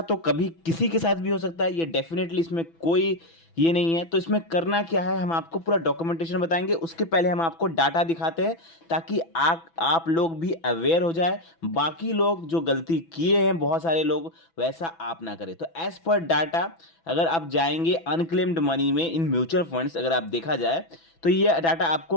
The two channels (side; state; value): right; late; 6.0 ms